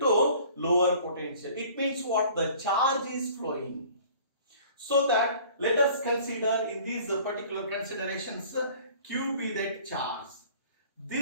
lower potential, it means what? The charge is flowing. So that let us consider in these particular considerations, Q be that charge.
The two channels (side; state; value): both; inverted; correlation -0.50